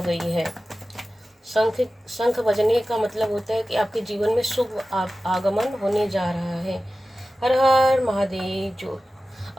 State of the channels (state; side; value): normal; both; correlation 0.95